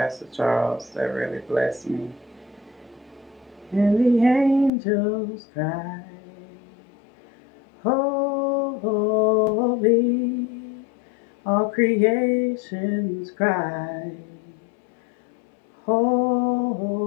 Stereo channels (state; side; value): drops out; right; at 4.7 s